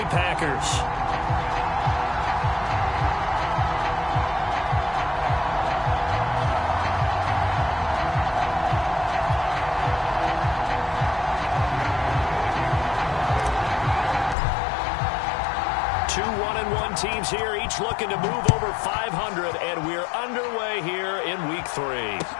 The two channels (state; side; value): drops out; right; at 14.4 s